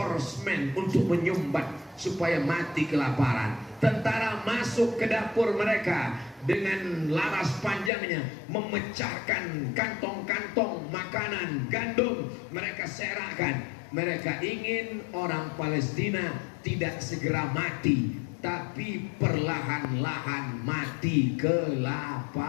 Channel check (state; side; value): drops out; right; at 7.9 s